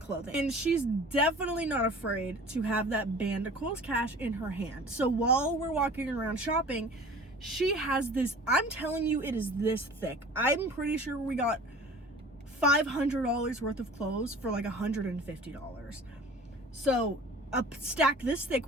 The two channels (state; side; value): normal; both; correlation 0.44